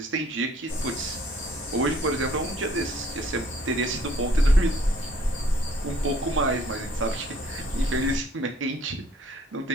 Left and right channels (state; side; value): normal; both; correlation 0.60